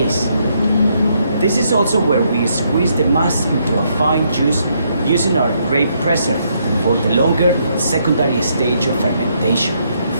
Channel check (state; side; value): inverted; both; correlation -0.74